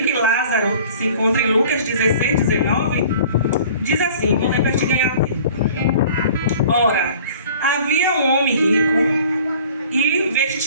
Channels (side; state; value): both; inverted; correlation -0.49